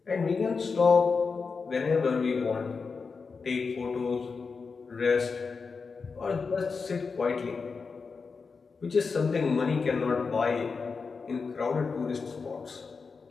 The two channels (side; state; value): right; quieter; 4.9 dB